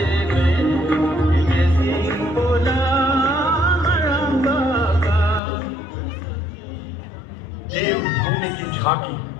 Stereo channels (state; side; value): drops out; right; at 5.4 s